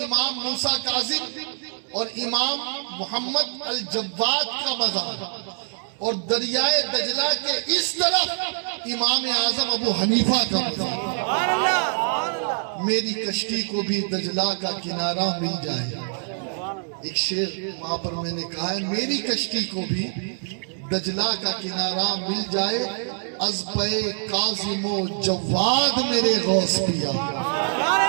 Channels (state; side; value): silent; left; digital silence